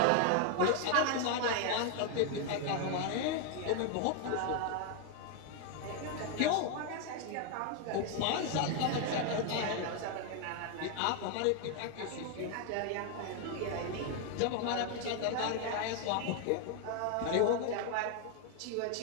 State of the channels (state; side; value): different; both; correlation 0.00